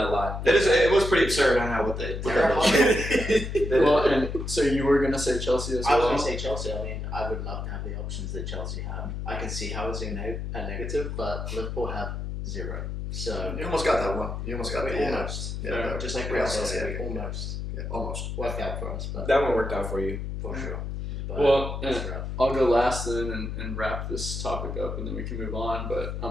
a lot. It was pretty absurd. I know what they did. Well, and so you were going to say Chelsea as I was well? going to say Chelsea. I mean, I would love to have the options that Chelsea have. I can see how it's a negative, but Liverpool have 0. So You almost got that one. You almost got the almost. Yeah, Just like Real Real Sociedad. Sociedad, almost Yeah, almost. worked out for us, but That one worked out for you. for sure. But Well, it's rough. I'll go last then and wrap this topic up, and then we can move on. But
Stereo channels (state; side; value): noise; left; hum, 5 dB below the sound